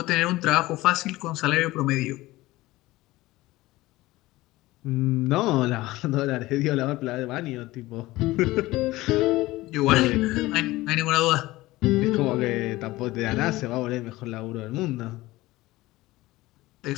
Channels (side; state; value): right; quieter; 18.6 dB